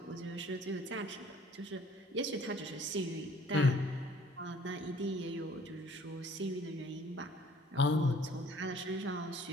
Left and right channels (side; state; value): both; normal; correlation 0.55